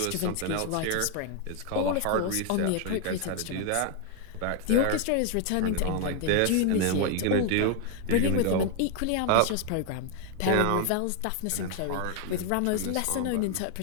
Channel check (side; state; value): both; different; correlation 0.00